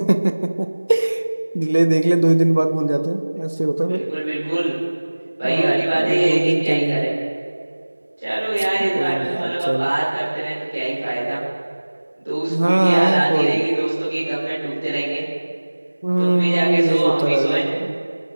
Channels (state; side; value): inverted; both; correlation -1.00